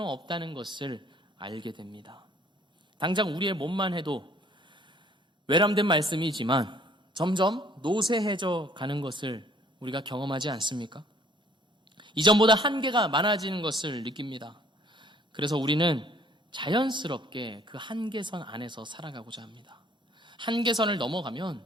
없다는 것을 알게 됩니다. 당장 우리의 몸만 해도 외람된 말씀이지만 점점 노쇠해져 가는 것을 우리가 경험하지 않습니까? 이전보다 한계가 많아지는 것을 느낍니다. 그래서 우리는 자연스럽게 그 한계선 안에서 살아가고자 합니다. 한계선을 넘어가면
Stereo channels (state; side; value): normal; both; correlation 0.58